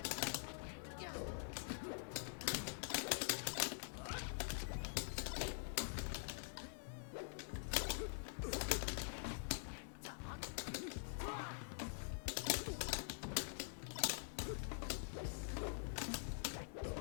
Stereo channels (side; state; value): right; silent; digital silence